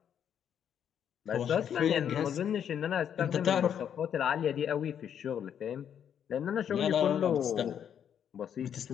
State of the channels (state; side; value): quieter; right; 8.8 dB